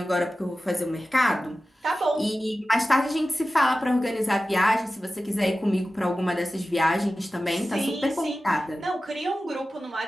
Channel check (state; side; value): normal; both; correlation 0.95